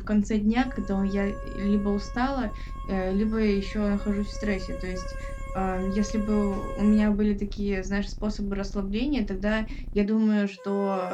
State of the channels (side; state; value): both; identical; correlation 1.00